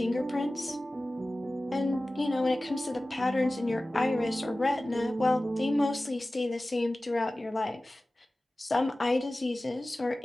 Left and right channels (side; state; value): both; normal; correlation 0.97